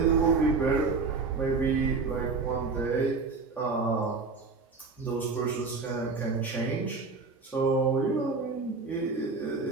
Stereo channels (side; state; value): left; quieter; 4.3 dB